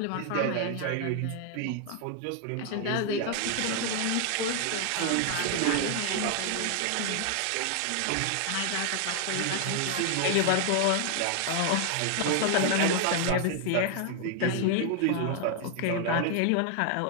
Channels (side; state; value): both; different; correlation 0.00